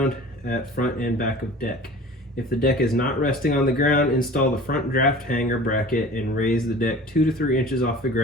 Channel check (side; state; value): both; normal; correlation 0.41